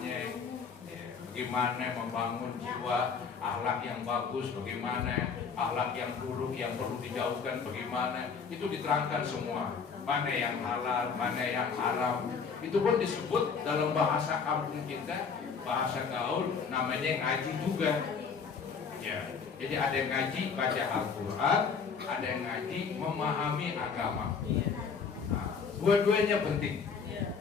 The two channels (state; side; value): quieter; right; 5.7 dB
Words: ya, bagaimana membangun jiwa, akhlak yang bagus, bagaimana akhlak yang buruk yang perlu dijauhkan, bagaimana itu diterangkan semua. Mana yang halal, mana yang haram. Itu pun disebut dalam bahasa kampung kita bahasa gaul namanya ngaji juga. Ya, jadi ada yang ngaji baca Al-Quran, ada yang ngaji memahami agama. Nah, dua-duanya penting.